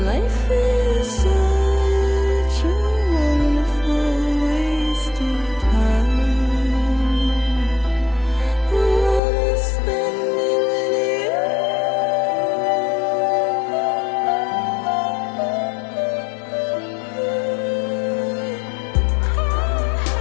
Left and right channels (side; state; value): right; drops out; at 9.2 s